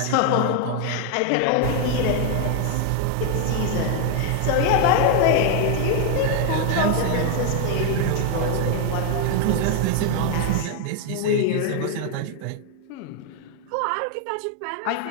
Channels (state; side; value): different; both; correlation 0.00